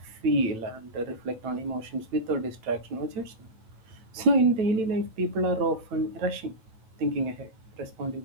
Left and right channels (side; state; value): left; late; 9.1 ms